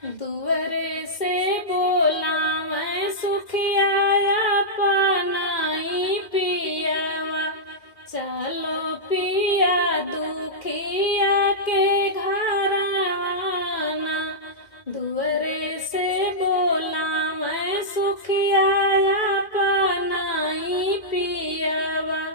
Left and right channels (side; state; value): right; late; 2.1 ms